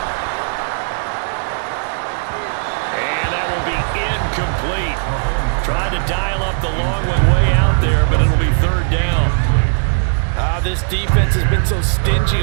And that will be incomplete. Tried to dial up the long one way out there, but it'll be 3rd down. This defense has been so stingy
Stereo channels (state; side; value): silent; left; digital silence